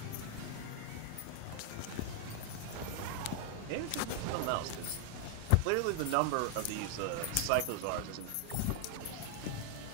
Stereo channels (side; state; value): both; different; correlation 0.00